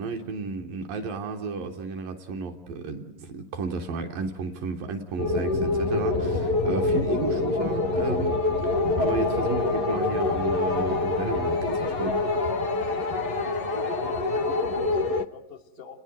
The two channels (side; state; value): left; late; 11 ms